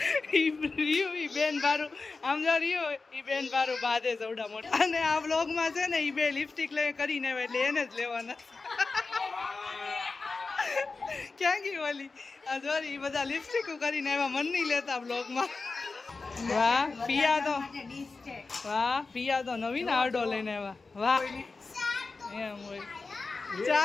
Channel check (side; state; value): right; quieter; 4.0 dB